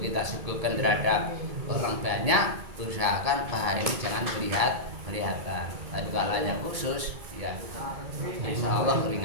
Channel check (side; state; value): left; late; 2.3 ms